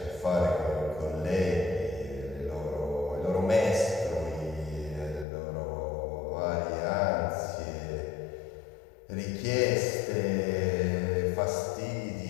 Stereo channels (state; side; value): drops out; right; at 5.2 s